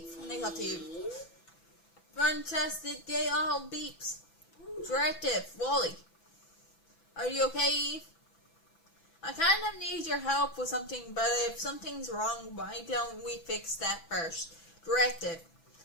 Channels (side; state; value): right; late; 6.0 ms